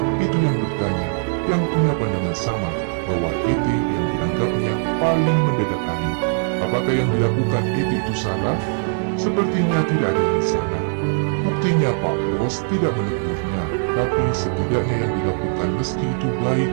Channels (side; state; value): left; silent; 64 dB below the other